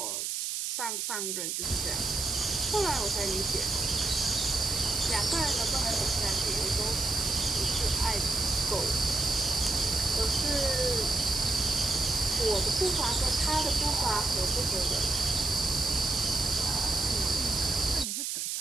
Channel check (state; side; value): noise; right; hiss, 2 dB below the sound